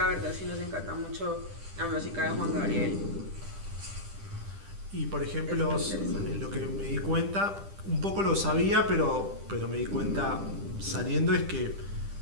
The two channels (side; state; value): left; late; 10 ms